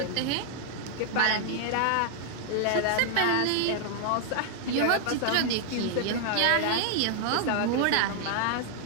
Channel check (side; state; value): both; different; correlation 0.00